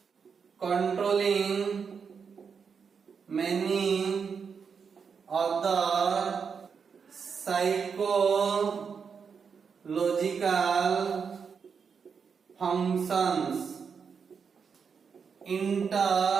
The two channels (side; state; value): left; quieter; 6.2 dB